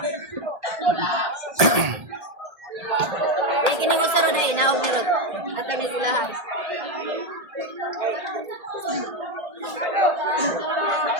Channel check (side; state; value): left; late; 1.7 ms